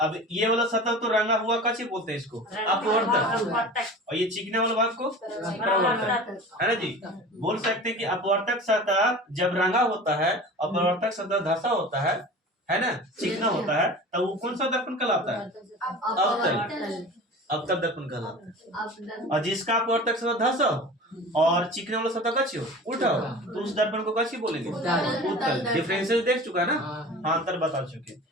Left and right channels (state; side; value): normal; both; correlation 0.37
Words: ये वाला सतह तो रंगा हुआ का चीज बोलते हैं इसको, अपवर्तक, और ये चिकने वाला भाग को प्रवर्तक, है ना जी? बोल सकते हैं कि अपवर्तक सतह जब रंगा होता है, अपवर्तक सतह धसा होता है ना, चिकना होता है, तब वो कौन सा दर्पण कहलाता है? अवतल। अवतल दर्पण कहलाता है। और जिसका अपवर्तक सतह धसा हो और चिकने वाला सतह कच्ची हो, उल्टा हो, तो उस दर्पण को कच्ची बोलेंगे? उत्तल। डिफरेंशियल देख चुका है ना? हाँ अंतर बता चुके।